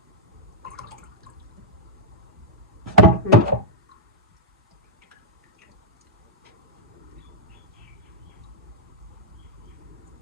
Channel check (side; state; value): both; normal; correlation -0.06